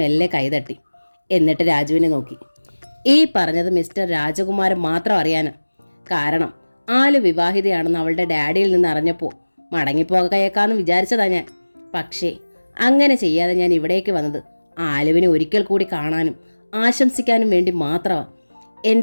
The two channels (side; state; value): both; inverted; correlation -1.00